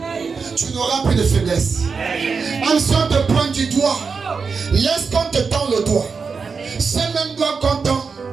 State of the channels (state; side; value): quieter; left; 5.2 dB